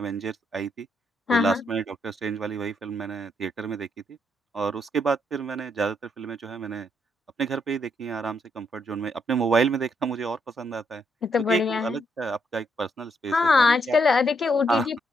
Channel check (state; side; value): normal; both; correlation 0.76